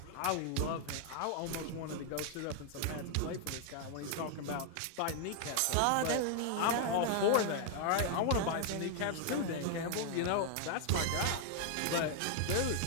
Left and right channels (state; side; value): different; both; correlation 0.00